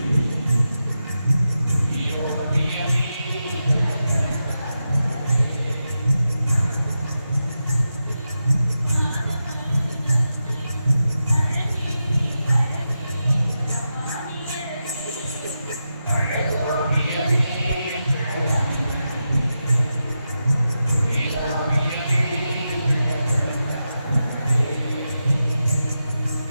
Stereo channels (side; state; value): both; inverted; correlation -0.89